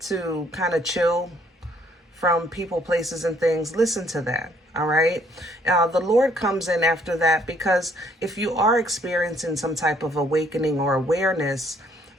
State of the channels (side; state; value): both; normal; correlation 0.65